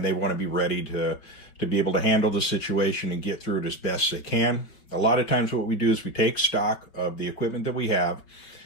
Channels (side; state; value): right; late; 5.2 ms